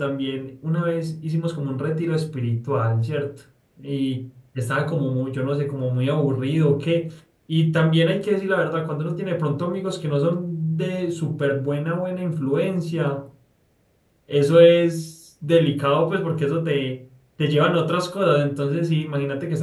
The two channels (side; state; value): both; identical; correlation 1.00